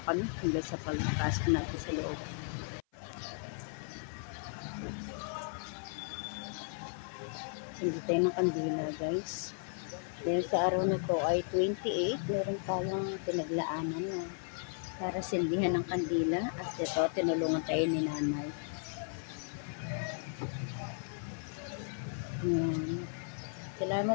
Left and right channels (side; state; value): right; silent; 54 dB below the other